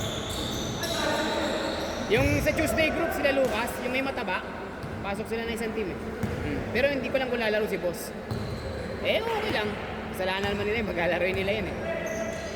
Yung sa Tuesday group, sila Lucas, yung may mataba, pasok sila na isang team eh. Pero hindi ko lang kung lalaro si boss. Eh, okay lang. Kasalanan naman nila yun, maglalaroin nila yun eh.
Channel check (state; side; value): identical; both; correlation 1.00